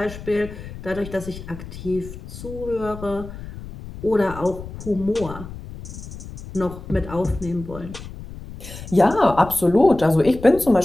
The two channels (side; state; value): left; noise; rumble, 13 dB below the sound